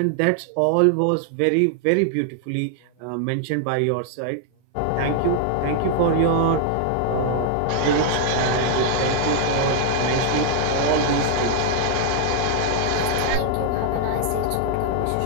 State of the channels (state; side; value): different; both; correlation 0.00